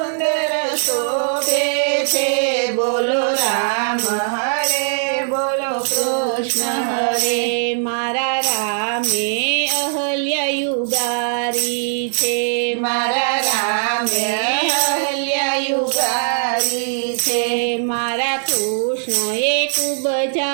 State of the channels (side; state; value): left; silent; digital silence